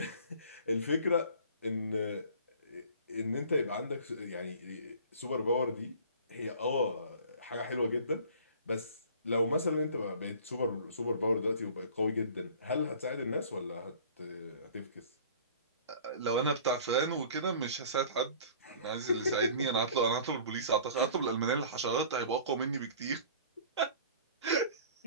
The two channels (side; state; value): both; inverted; correlation -0.46